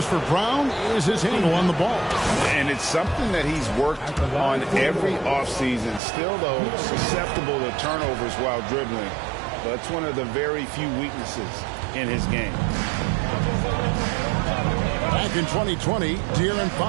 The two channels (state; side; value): drops out; left; at 6.0 s